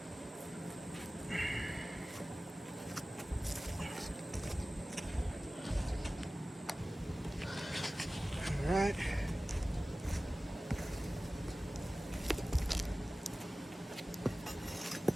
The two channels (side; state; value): both; normal; correlation 0.97